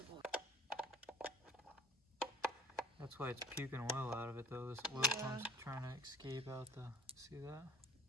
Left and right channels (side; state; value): both; normal; correlation 0.47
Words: That's why it's puking oil out of it though. This oil pump's trying to escape out the, see that?